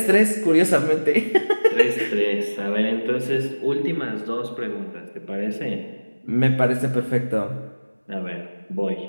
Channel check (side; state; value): both; inverted; correlation -1.00